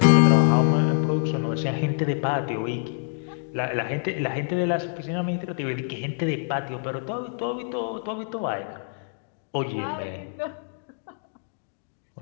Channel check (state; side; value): silent; right; digital silence